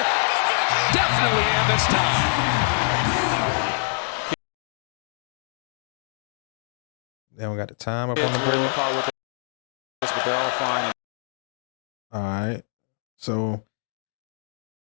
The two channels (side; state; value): right; silent; digital silence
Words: Definitely in this time. Then we got the time up on the board. But they're all fine. All right. So